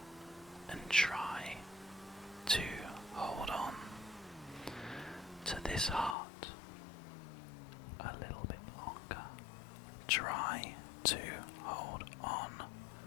and try to hold on to this heart a little bit longer. Try to hold on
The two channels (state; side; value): drops out; right; at 6.2 s